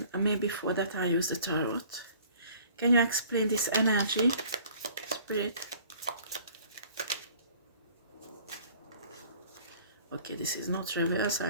maybe for that I use the tarot. Can you explain this energy, Spirit? Okay, this is not reverse,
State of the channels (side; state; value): both; inverted; correlation -0.52